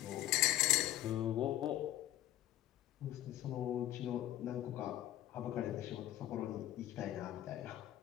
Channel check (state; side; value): quieter; right; 13.6 dB